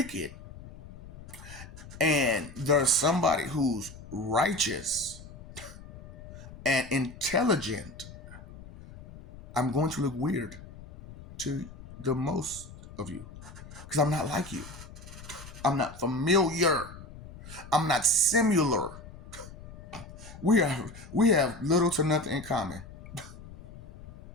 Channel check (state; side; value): noise; left; rumble, 16 dB below the sound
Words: and there's somebody who's righteous and intelligent, I'm going to look weird to the most of you because I'm not like you. I'm not familiar. I'm not similar. We have little to nothing in common.